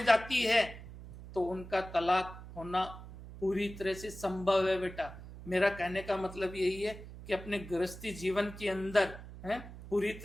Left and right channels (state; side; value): noise; right; hum, 14 dB below the sound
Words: जाती है तो उनका तलाक होना पूरी तरह से संभव है बेटा। मेरा कहने का मतलब यही है कि अपने गृहस्थी जीवन के अंदर पूरी